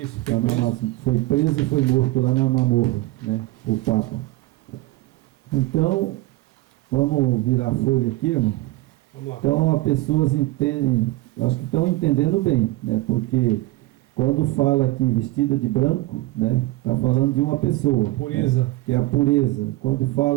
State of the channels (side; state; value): left; quieter; 18.4 dB